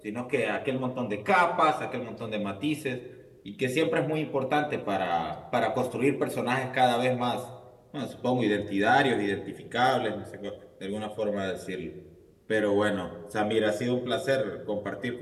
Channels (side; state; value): both; identical; correlation 1.00